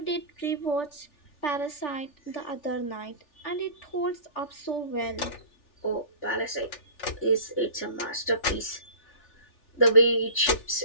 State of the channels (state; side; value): late; right; 3.4 ms